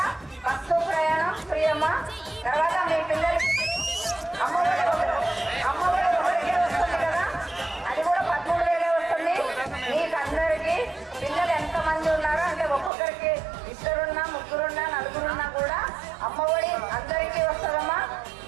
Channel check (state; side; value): drops out; left; at 12.9 s